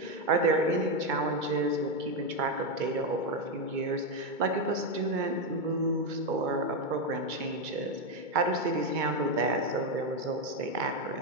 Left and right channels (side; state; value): left; late; 2.2 ms